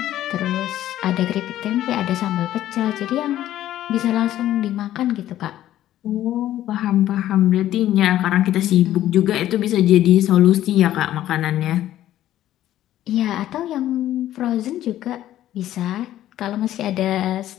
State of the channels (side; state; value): right; quieter; 13.0 dB